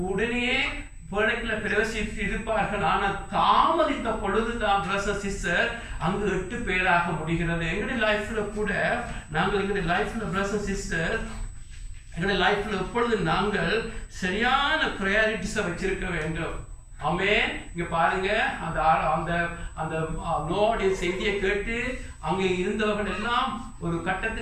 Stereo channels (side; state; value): both; identical; correlation 1.00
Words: உடனே பேழைக்குள்ள பிரவேசித்து இருப்பார்கள். ஆனால் தாமதித்த பொழுதுதான் பிரதர்ஸ் சிஸ்டர் அங்கு 8 பேராக முடிகிறது. எங்களுடைய லைஃப்ல கூட நாங்கள் எங்களுடைய லைஃப்ல பிரதர்ஸ் சிஸ்டர் எங்களுடைய லைஃப்ல எப்பொழுது நாங்கள் சரியான ப்ரையாரிட்டிஸை வச்சிருக்க வேண்டும். இங்க பாருங்க, அந்த நோவுடைய செய்தியை கேட்டு அங்கே இருந்தவர்கள் எல்லாம் ஒரு